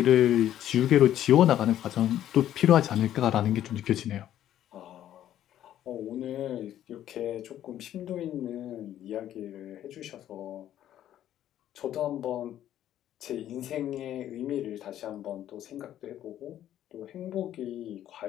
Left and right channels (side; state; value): right; quieter; 11.8 dB